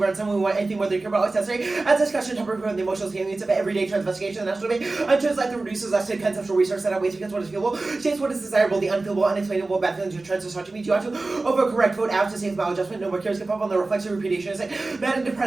someone we want anything whether they care about always necessary. As discussion topic from the emotional experience of everyday trans investigation, the national debate on trans life that reduces us to conceptual research that outweighs because what is feelable, shapes what is desirable, the unfeelable, unexplainable, bad feelings of trans misogyny. Do you want to overcorrect, vote out to save maladjustment, no more cares, give up on the reflexive repudiation, mad and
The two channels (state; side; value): quieter; left; 3.3 dB